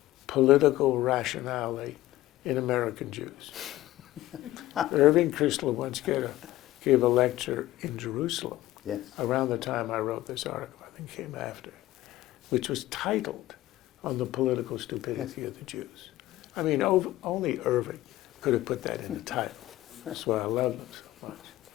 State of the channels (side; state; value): right; quieter; 15.8 dB